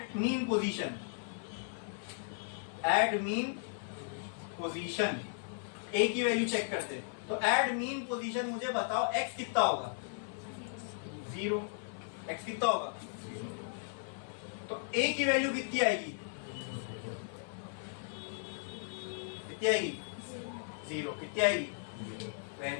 mean position, at mean position a की वैल्यू चेक करते हैं। तो एट मीन पोजीशन मुझे बताओ एक्स कितना होगा? 0। एक्स कितना होगा? तो ए की वैल्यू कितनी आएगी? कितनी आएगी? 0। कितनी आएगी?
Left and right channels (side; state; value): right; silent; 54 dB below the other